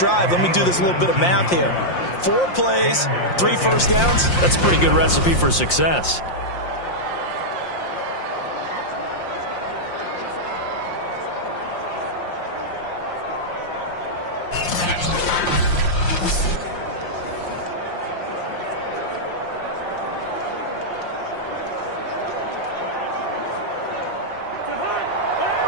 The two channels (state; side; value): late; right; 5.7 ms